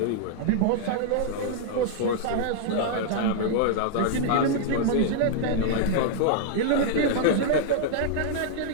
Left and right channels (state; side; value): different; both; correlation -0.01